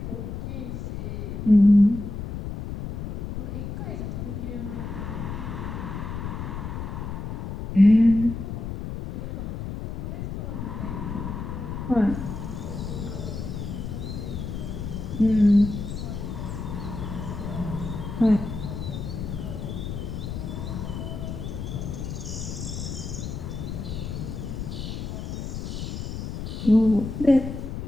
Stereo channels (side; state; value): left; noise; rumble, 5 dB below the sound